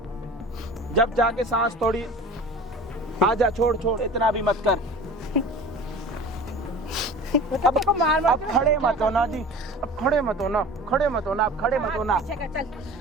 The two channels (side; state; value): both; normal; correlation 0.39